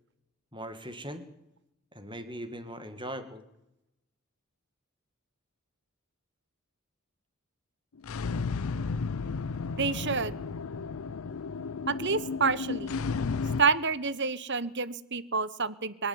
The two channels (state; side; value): normal; both; correlation -0.06